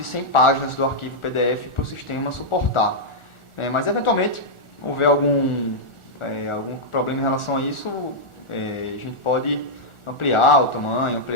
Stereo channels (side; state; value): right; late; 1.4 ms